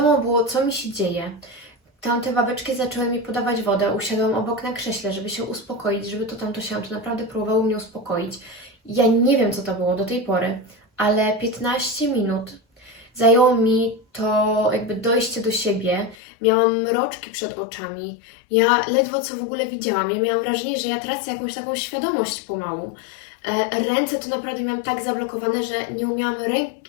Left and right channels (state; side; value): drops out; right; at 16.2 s